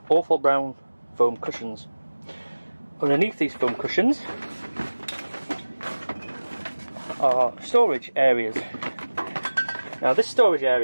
awful brown foam cushions. Underneath these foam cushions are storage areas. Now this storage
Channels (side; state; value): both; inverted; correlation -1.00